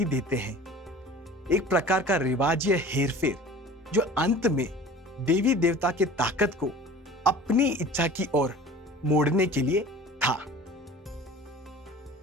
देते हैं। एक प्रकार का रिवाज या हेरफेर जो अंत में देवी देवता के ताकत को अपनी इच्छा की ओर मोड़ने के लिए था।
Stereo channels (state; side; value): normal; both; correlation 0.41